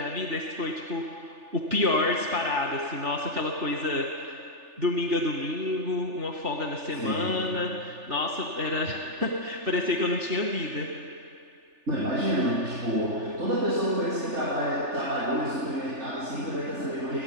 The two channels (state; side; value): late; left; 3.4 ms